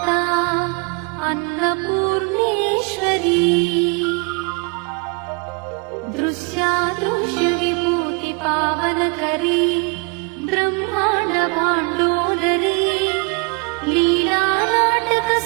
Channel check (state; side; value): quieter; left; 31.9 dB